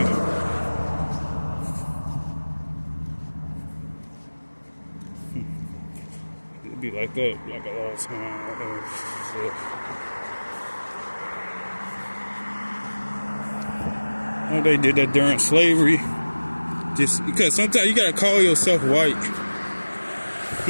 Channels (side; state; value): both; inverted; correlation -1.00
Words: It'd be like that, like a lot of time. Oh, they did that during slavery. Just because sometimes you gotta call yourself white